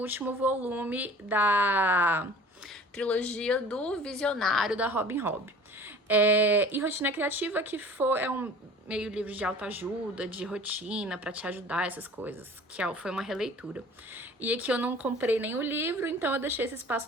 volume da trilogia do Visionário, da Robin Hobb. E Rotina Criativa, que é um meio livro de autoajuda, de rotina, pra te ajudar, essas coisas, que foi uma releitura. E aqui eu não comprei nem o livro, então eu deixei esse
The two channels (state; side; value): normal; both; correlation 0.44